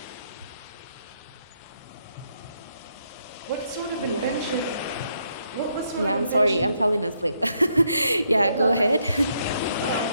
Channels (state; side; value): inverted; both; correlation -0.76